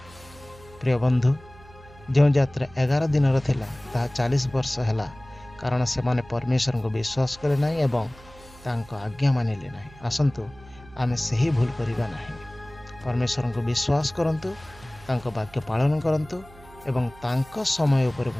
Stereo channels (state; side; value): noise; right; hum, 22 dB below the sound